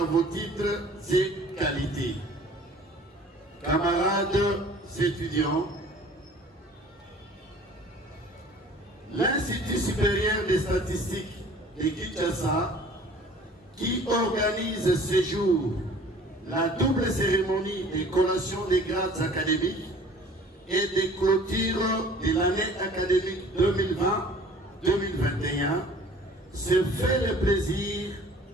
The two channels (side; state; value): both; normal; correlation 0.49